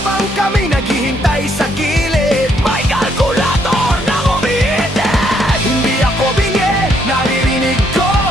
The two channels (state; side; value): normal; both; correlation 0.71